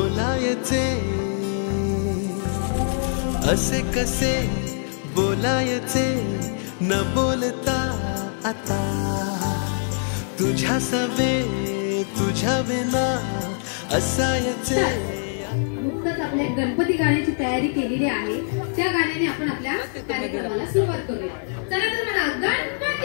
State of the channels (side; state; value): right; silent; 55 dB below the other